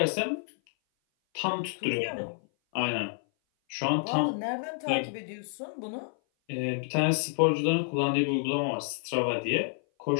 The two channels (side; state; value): right; silent; 56 dB below the other